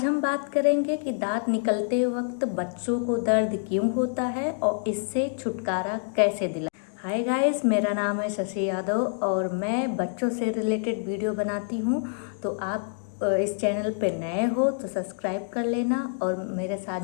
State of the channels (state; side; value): silent; right; digital silence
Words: हम बात करेंगे कि दांत निकलते वक्त बच्चों को दर्द क्यों होता है और इससे छुटकारा कैसे दिला। हाय गाइस, मेरा नाम है शशि यादव और मैं बच्चों से रिलेटेड वीडियो बनाती हूँ। तो आप इस चैनल पे नए हो तो सब्सक्राइब कर लेना और मेरे